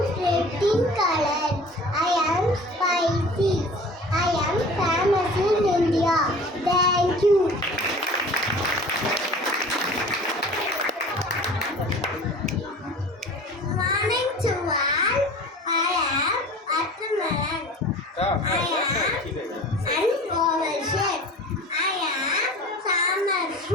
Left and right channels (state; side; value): normal; both; correlation 0.42